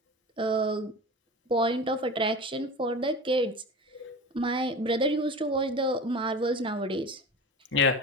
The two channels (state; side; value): normal; both; correlation 0.33